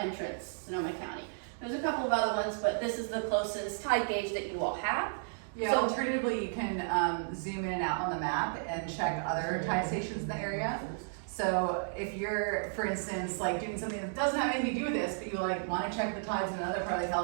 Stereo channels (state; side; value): silent; left; digital silence